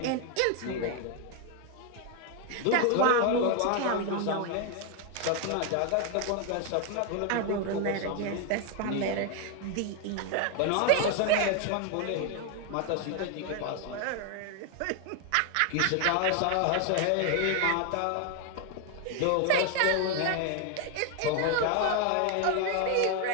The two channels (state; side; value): different; both; correlation 0.01